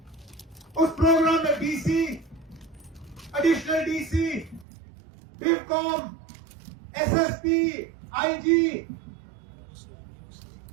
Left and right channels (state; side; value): drops out; left; at 4.7 s